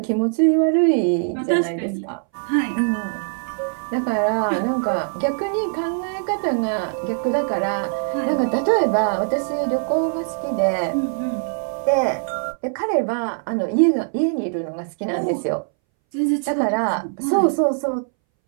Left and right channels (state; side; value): silent; left; 63 dB below the other